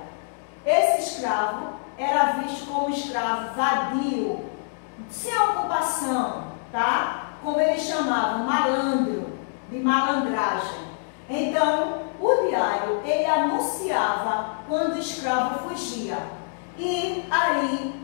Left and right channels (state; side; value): silent; right; digital silence